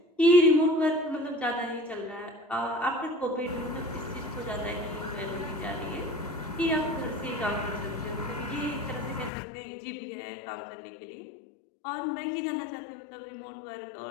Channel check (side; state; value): right; drops out; at 9.3 s